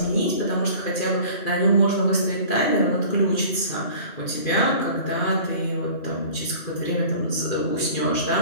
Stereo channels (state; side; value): late; right; 2.4 ms